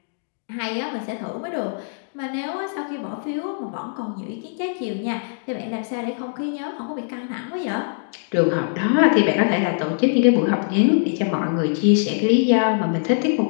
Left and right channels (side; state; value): right; silent; digital silence